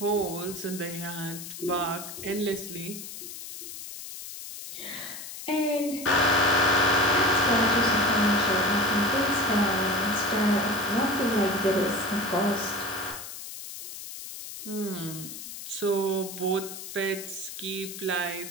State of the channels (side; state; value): left; noise; hiss, 11 dB below the sound